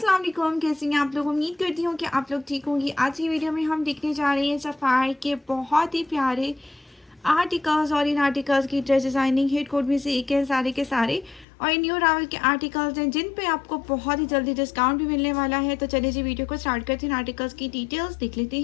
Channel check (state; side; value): drops out; right; at 11.5 s